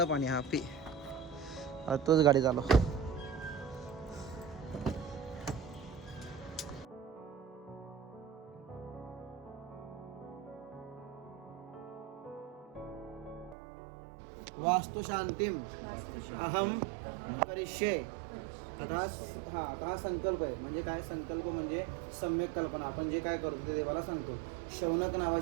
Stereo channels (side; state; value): left; drops out; at 13.6 s